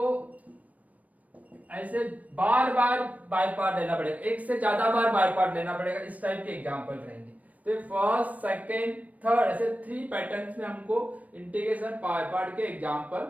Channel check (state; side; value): late; left; 0.071 ms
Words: ऐसे बार बाय पार्ट लेना पड़ेगा, एक से ज्यादा बार बाय पार्ट लेना पड़ेगा, इस टाइप के एग्जांपल रहेंगे। तो फर्स्ट सेकंड थर्ड ऐसे 3 पैटर्न्स में हमको इंटीग्रेशन बाय पार्ट के एग्जांपल